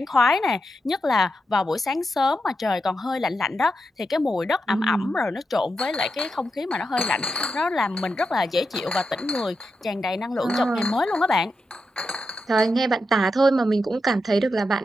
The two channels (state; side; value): normal; both; correlation 0.87